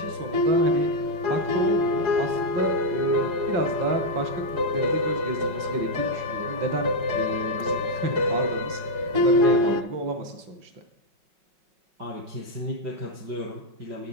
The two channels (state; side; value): late; left; 5.4 ms